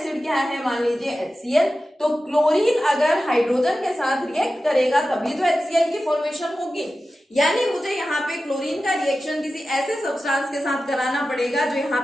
क्या है, मान लीजिए HCl। तो क्लोरीन अगर हाइड्रोजन के साथ रिएक्ट करेगा तभी तो HCl की फॉर्मेशन होगी, यानी मुझे यहाँ पे क्लोरीन का रिएक्शन किसी ऐसे सब्सटेंस के साथ कराना पड़ेगा जो यहाँ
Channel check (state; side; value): normal; both; correlation 0.94